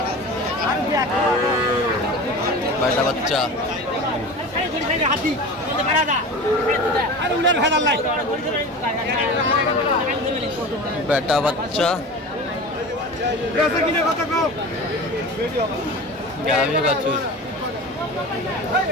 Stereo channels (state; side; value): normal; both; correlation 0.33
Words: বেটা বাচ্চা বেটা বাচ্চা গাভী বাছুর।